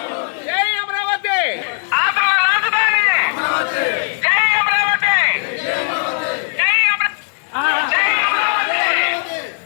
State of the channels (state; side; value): silent; right; 68 dB below the other